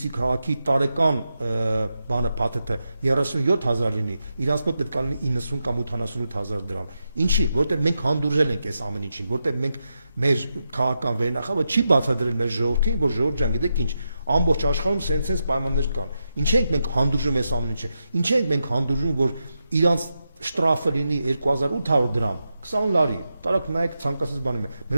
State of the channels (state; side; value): inverted; both; correlation -0.86